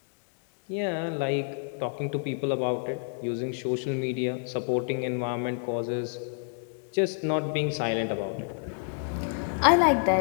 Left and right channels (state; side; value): silent; right; digital silence